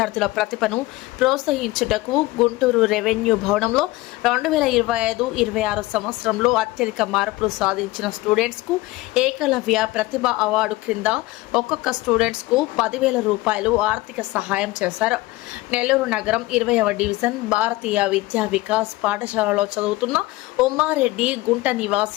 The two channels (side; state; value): right; quieter; 19.2 dB